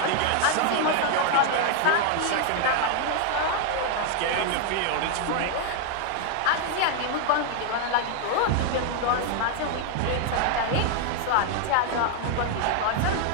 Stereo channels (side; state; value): both; different; correlation 0.00